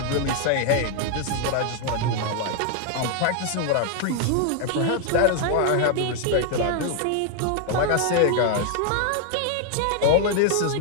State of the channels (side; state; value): both; different; correlation 0.00